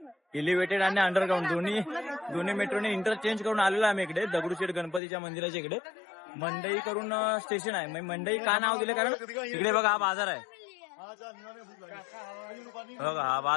एलिव्हेटेड आणि अंडरग्राऊंड दोन्ही मेट्रोने इंटरचेंज करून आलेलो आम्ही इकडे दगडूशेठ गणपतीच्या मंदिराच्या इकडे. मंडई करून स्टेशन आहे. मंडई का नाव दिले कारण इकडे बघा हा बाजार आहे, बघा हा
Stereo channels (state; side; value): drops out; right; at 5.0 s